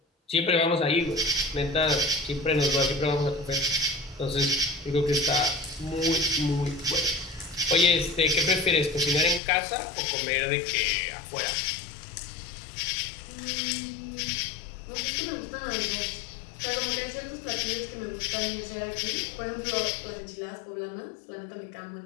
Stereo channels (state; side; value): drops out; right; at 9.4 s